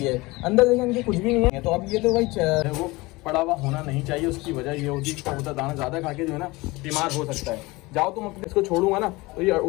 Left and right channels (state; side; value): quieter; right; 22.3 dB